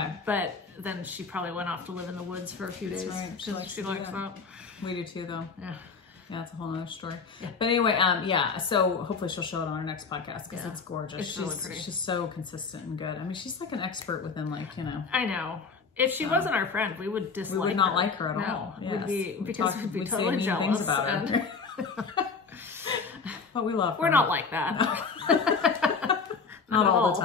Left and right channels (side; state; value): right; quieter; 5.0 dB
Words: But then she probably went off to live in the woods for a few days. That's right. She likes that. We do too, though. Yeah. Yeah, it's a whole other story. Yeah. But anyway, so hopefully she'll show it on our next podcast because it's gorgeous. It's really pretty. She's so consistent and good. I mean, she's like an expert within I know. If she wasn't our friend, we would dislike her. We would not like her at all. Yes. We'd be totally jealous. Things about her. But we love her. We're not like that. Not all the